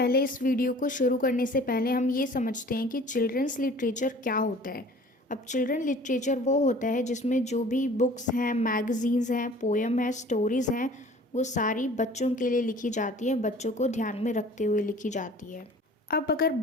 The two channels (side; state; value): both; normal; correlation 0.47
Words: इस video को शुरू करने से पहले हम ये समझते हैं कि चिल्ड्रंस लिटरेचर क्या होता है. अब चिल्ड्रन लिटरेचर वो होता है जिसमें जो भी बुक्स हैं, मैगज़ीन्स हैं, पोएम है, स्टोरीज़ हैं, वो सारी बच्चों के लिए लिखी जाती है, बच्चों को ध्यान में रखते हुए लिखी जाती है. अब अगर